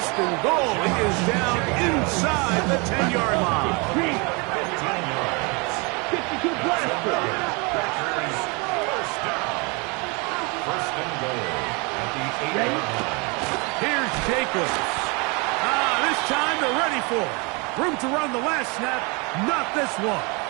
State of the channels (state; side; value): quieter; left; 30.0 dB